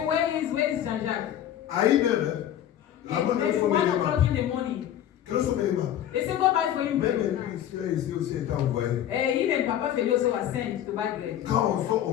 where is Jean-Jacques? à 1h, la And bonne maybe 1 o'clock in the morning. Quel sont mes mains? They say, go buy for him Même bread. lui, ici aussi été envoyé. Even Papa Feli also was sent to buy bread. Quand on sort,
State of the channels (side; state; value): right; quieter; 11.1 dB